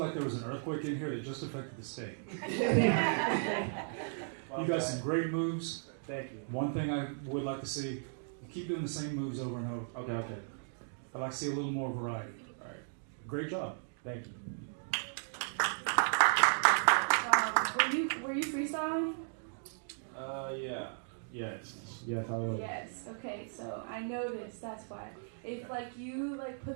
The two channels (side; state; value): left; silent; digital silence